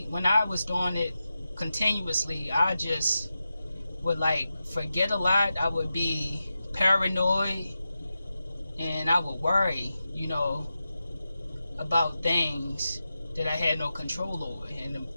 I was doing it continuously, I just would like forget a lot. I would be paranoid, and I would worry, about things that I had no control over, and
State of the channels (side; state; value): both; inverted; correlation -0.91